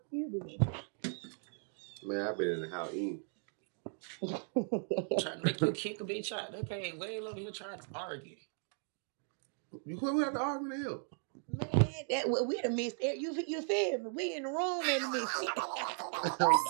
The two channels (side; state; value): left; silent; 53 dB below the other